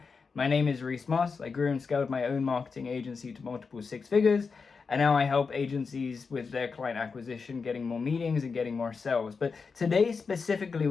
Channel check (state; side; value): quieter; right; 5.0 dB